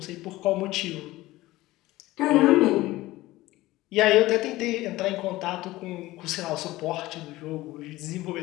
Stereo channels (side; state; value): right; quieter; 17.9 dB